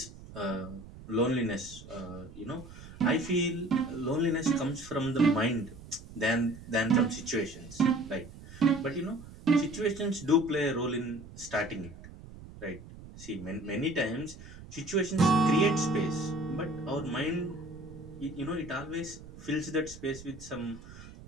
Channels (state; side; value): noise; right; rumble, 16 dB below the sound